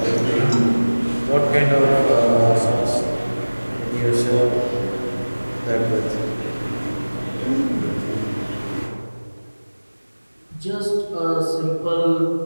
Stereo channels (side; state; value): both; inverted; correlation -1.00